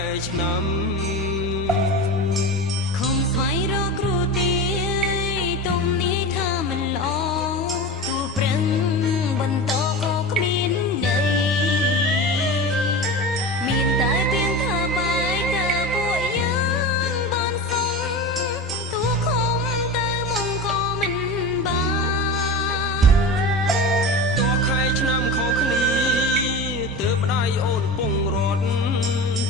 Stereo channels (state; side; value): normal; both; correlation 0.28